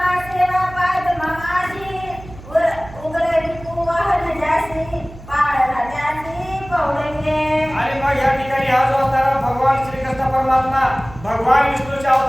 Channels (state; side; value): noise; right; hum, 17 dB below the sound